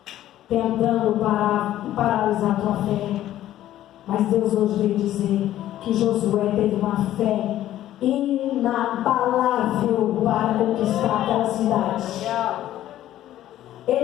tentando paralisar a tua fé, mas Deus hoje veio dizer que Josué teve uma fé inabalável para conquistar aquela cidade.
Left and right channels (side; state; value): right; quieter; 13.1 dB